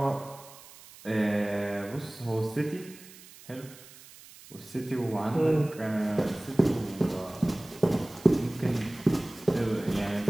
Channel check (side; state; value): right; noise; hiss, 20 dB below the sound